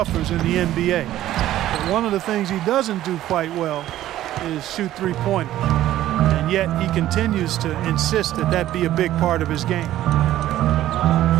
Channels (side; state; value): left; quieter; 13.6 dB